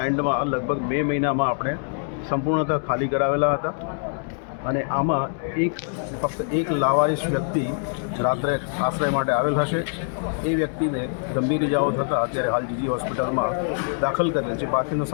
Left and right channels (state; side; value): silent; right; 62 dB below the other